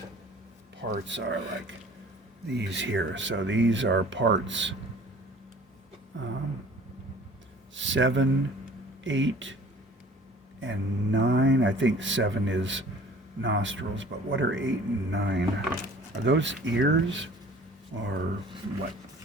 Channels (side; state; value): both; normal; correlation 0.49